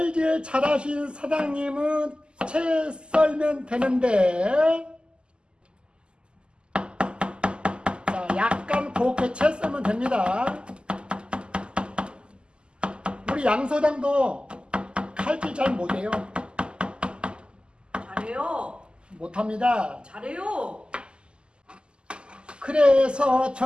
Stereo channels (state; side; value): late; left; 0.050 ms